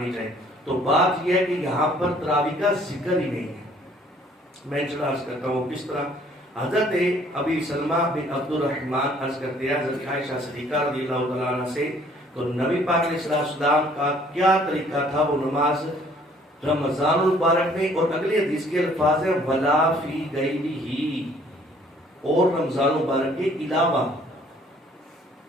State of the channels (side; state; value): both; normal; correlation 0.59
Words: جائے۔ تو بات یہ ہے کہ یہاں پر تراویح کا ذکر ہی نہیں ہے۔ میں عرض کرتا ہوں کس طرح حضرت ابی سلمہ بن عبد الرحمن عرض کرتے ہیں حضرت عائشہ صدیقہ رضی اللہ تعالیٰ عنہ سے، تو نبی پاک علیہ السلام کا کیا طریقہ تھا وہ نماز رمضان المبارک میں، اور اگلی حدیث کے الفاظ ہیں ولا فی غیرہ، اور رمضان مبارک کے علاوہ،